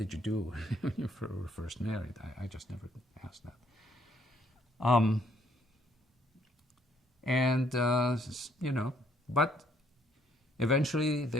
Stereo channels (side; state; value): both; normal; correlation 0.67